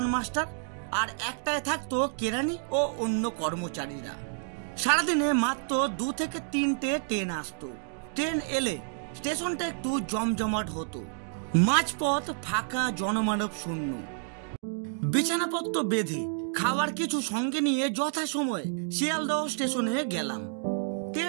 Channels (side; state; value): left; silent; 58 dB below the other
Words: মাস্টার আর একটায় থাকতো কেরানি ও অন্য কর্মচারীরা। সারাদিনে মাত্র 2 থেকে 3টে ট্রেন আসতো। ট্রেন এলে স্টেশনটা একটু জমজমাট হতো। মাঝপথ ফাঁকা, জনমানব শূন্য। বিছানাপত্র বেঁধে খাবার কিছু সঙ্গে নিয়ে যথাসময়ে শিয়ালদহ স্টেশনে গেলাম।